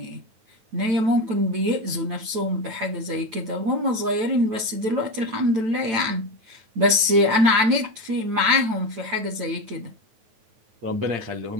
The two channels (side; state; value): left; late; 9.0 ms